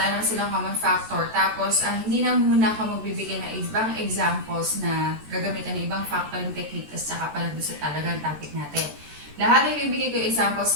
naman silang common factor. Tapos, hindi na muna ako magbibigay ng ibang examples na gagamitan ng ibang factoring technique kasi saka pala doon sa talagang topic natin. Lahat ng ibibigay ko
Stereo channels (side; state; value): left; late; 14 ms